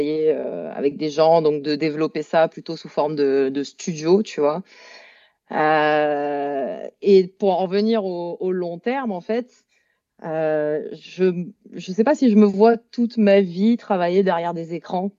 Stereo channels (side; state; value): both; identical; correlation 1.00